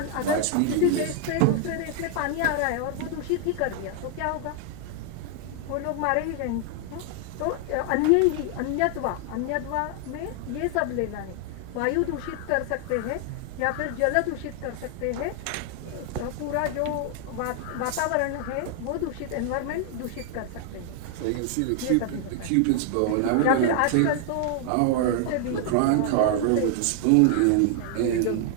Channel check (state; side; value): different; both; correlation 0.00